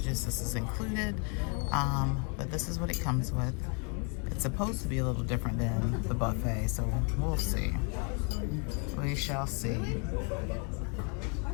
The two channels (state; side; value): quieter; right; 37.1 dB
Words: this is included. But this is what it comes with. It's supposed to be a little different than the buffet, so we'll see. We shall see.